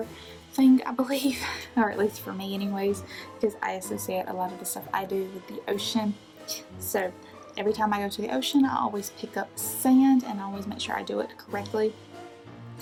thing, I believe, or at least for me anyways, because I associate a lot of the stuff I do with the ocean. So every time I go to the ocean, I always pick up sand, and I always make sure I do it correctly,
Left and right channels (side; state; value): both; identical; correlation 1.00